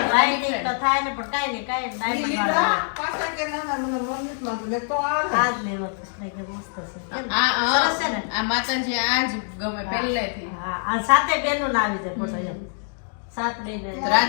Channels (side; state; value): right; silent; 62 dB below the other